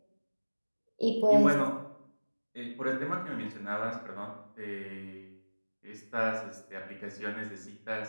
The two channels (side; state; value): both; inverted; correlation -1.00